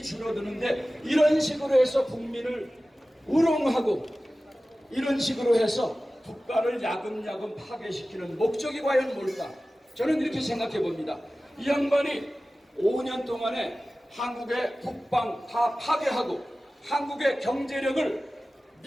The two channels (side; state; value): both; normal; correlation 0.96